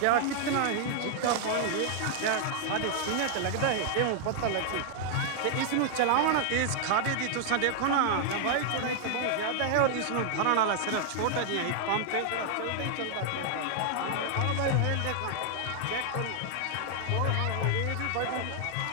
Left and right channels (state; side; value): different; both; correlation 0.00